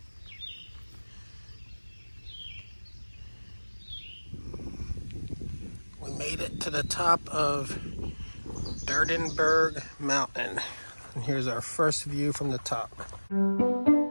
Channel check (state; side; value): inverted; both; correlation -1.00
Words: it to the top of Durdenberg Mountain. And here's our first view from the top.